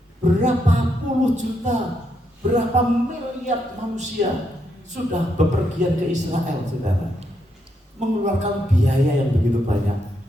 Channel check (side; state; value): both; normal; correlation 0.79